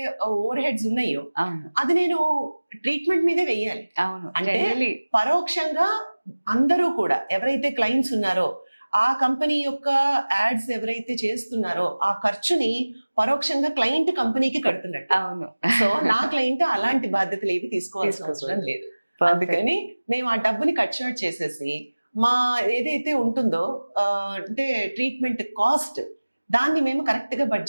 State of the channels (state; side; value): inverted; both; correlation -1.00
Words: ఓవర్ హెడ్స్ ఉన్నాయో అది నేను ట్రీట్మెంట్ మీదే వెయ్యాలి. అంటే పరోక్షంగా అందరూ కూడా ఎవరైతే క్లయింట్స్ ఉన్నారో ఆ కంపెనీ యొక్క యాడ్స్ ఎవరైతే చేస్తున్నారో ఆ ఖర్చుని పరోక్షంగా క్లయింట్ కంపెనీకి కడుతున్నట్టు. సో నా క్లయింట్ అలాంటి బాధ్యతలు ఏవి తీసుకోవాల్సిన అవసరం లేదు. అందుకని మేము ఆ డబ్బుని కట్ షార్ట్ చేసేసి మా ఏదైతే ఉంటుందో అంటే ట్రీట్మెంట్ కాస్ట్ దాన్ని మేము కరెక్ట్ గా